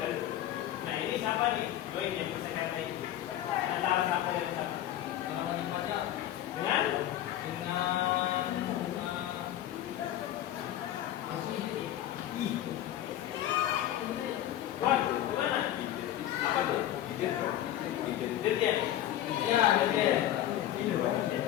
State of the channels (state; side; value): quieter; right; 12.5 dB